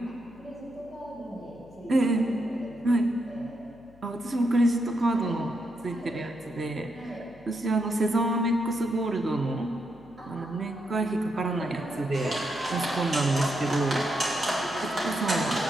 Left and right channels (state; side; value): noise; left; hum, 25 dB below the sound